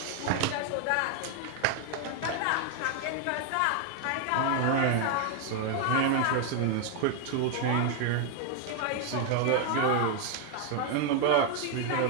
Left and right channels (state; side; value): different; both; correlation 0.00